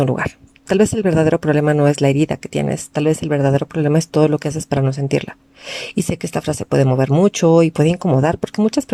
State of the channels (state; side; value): identical; both; correlation 1.00